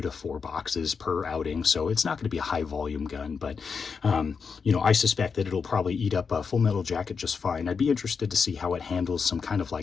to 4 boxes per outing. So it's not going to be a high volume gun, but I suspect that it'll probably eat up a Full Metal Jacket just fine. I'd be interested to see how it handles some kind of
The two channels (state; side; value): quieter; right; 5.6 dB